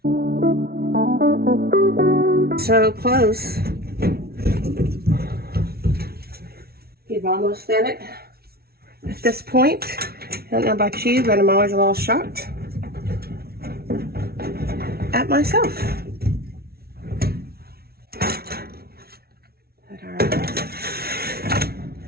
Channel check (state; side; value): late; left; 0.45 ms